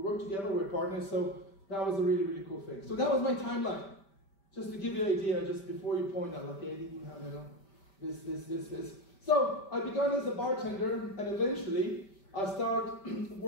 work together, we're partners, so that was a really, really cool thing. So that was my timeline. Just to give you an idea, just before you point out, like, Eddie, you have, this. So I began as a bartender, and eventually I started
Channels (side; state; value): right; late; 5.1 ms